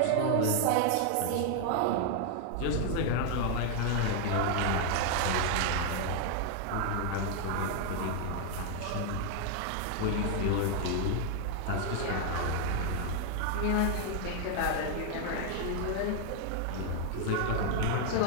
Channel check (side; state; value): both; different; correlation 0.00